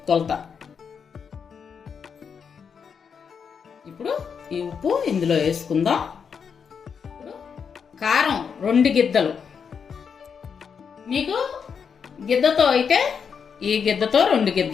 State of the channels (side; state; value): right; quieter; 6.6 dB